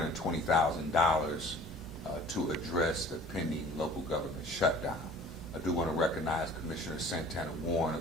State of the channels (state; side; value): normal; both; correlation 0.47